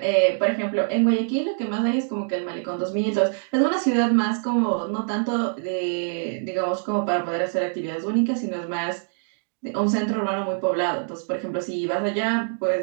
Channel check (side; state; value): left; silent; digital silence